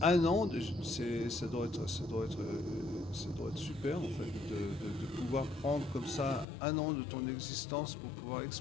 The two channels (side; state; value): right; drops out; at 6.5 s